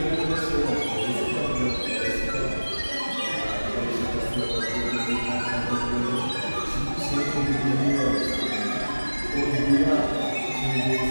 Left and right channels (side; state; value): both; inverted; correlation -1.00